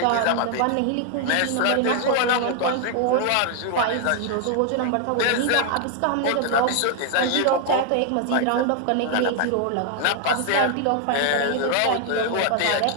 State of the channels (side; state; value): both; different; correlation 0.00